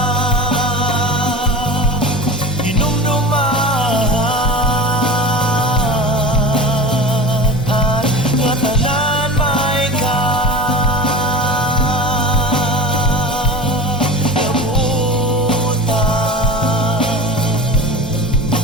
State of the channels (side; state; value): both; normal; correlation 0.32